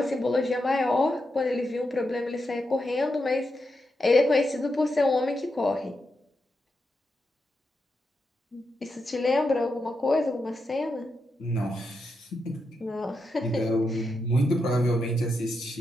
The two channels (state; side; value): normal; both; correlation 0.85